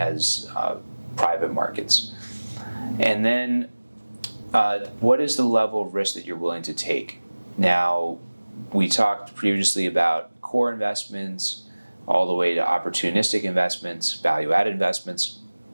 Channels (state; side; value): inverted; both; correlation -1.00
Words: private markets. And then what is the level of risk that you're willing to take? Now, we talked previously about core investments all the way to opportunistic investments, value-added investments.